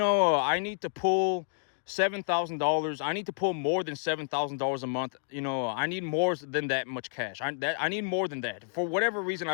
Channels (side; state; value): right; silent; digital silence